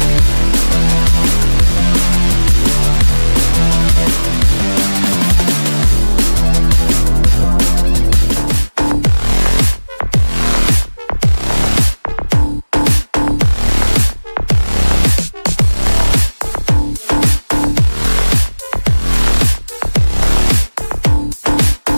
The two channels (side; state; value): both; inverted; correlation -1.00